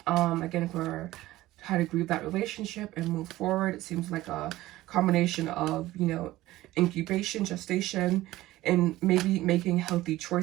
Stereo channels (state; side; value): quieter; left; 16.7 dB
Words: Again, for how to grieve that relationship and move forward. It seems like a combination of, you know, incubation, gestation, and maybe making healthy